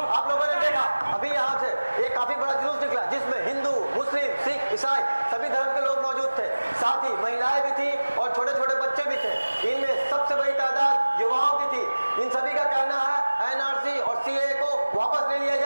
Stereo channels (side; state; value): both; inverted; correlation -1.00